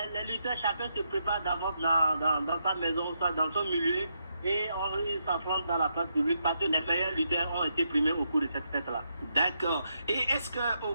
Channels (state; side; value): inverted; both; correlation -0.80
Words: lutteurs, chacun se prépare d'avance dans sa maison, dans son milieu, et ils s'affrontent dans la place publique parce que les meilleurs lutteurs ont été primés au cours de cette fête-là. D'accord. Et est-ce qu'au